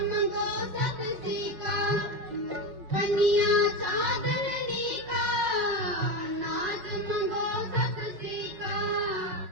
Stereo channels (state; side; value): late; left; 6.0 ms